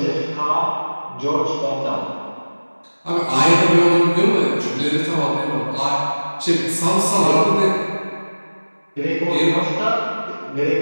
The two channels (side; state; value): both; inverted; correlation -1.00